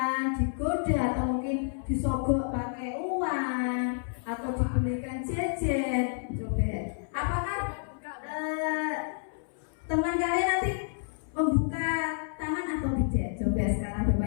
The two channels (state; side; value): silent; right; 58 dB below the other